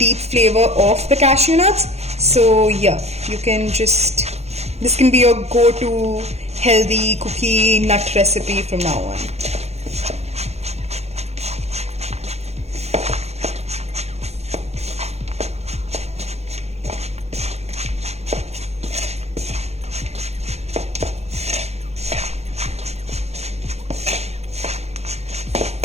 flavor of the cashew nuts. So yeah, you can just, this can be your go-to healthy cookie nut recipe from now on.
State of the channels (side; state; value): left; late; 0.31 ms